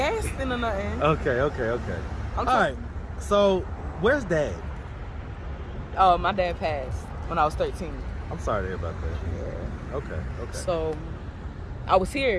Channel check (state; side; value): identical; both; correlation 1.00